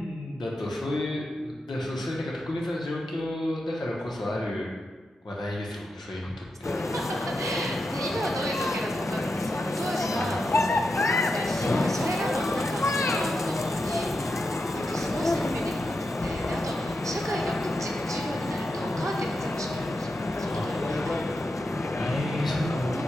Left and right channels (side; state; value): both; normal; correlation 0.87